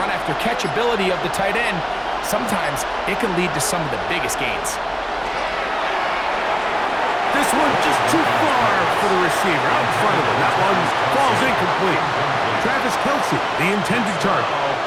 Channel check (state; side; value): identical; both; correlation 1.00